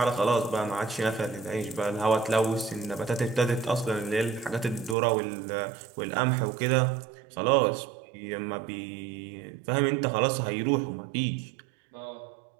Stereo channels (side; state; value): left; drops out; at 5.0 s